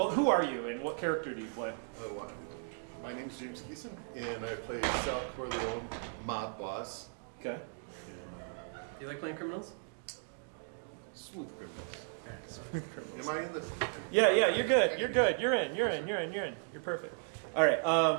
who are you and what character do you play? My name's James Geeson, and I play Sal Corleone, mob boss. Okay. You like playing criminals? Smooth criminals. Am I in the? Yeah, you're good. You're good. You're in. You're perfect. All right.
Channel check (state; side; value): silent; left; 54 dB below the other